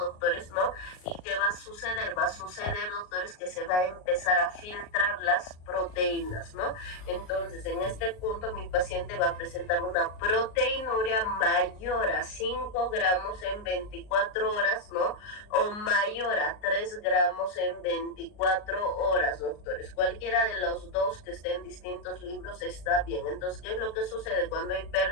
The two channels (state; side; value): late; right; 38 ms